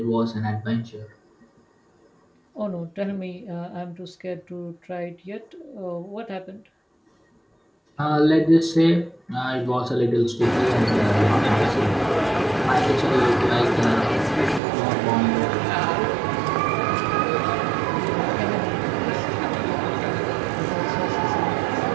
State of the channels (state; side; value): drops out; left; at 14.6 s